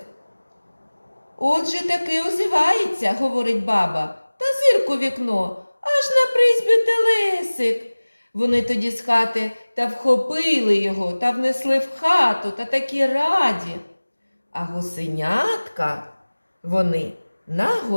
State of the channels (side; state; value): both; inverted; correlation -1.00